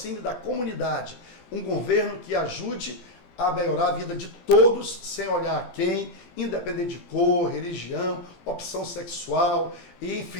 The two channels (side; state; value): right; late; 17 ms